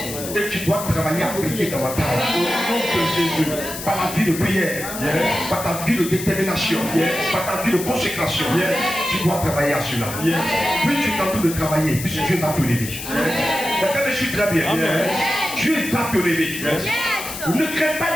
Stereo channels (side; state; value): left; noise; hiss, 9 dB below the sound